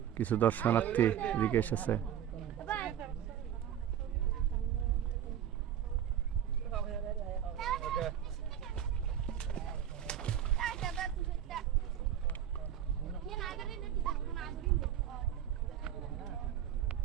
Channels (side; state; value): left; quieter; 10.0 dB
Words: কিছু দর্শনার্থী এদিকে এসেছে।